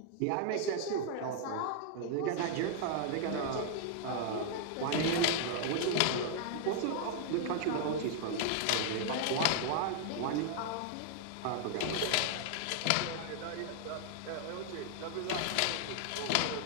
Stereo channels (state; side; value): different; both; correlation 0.00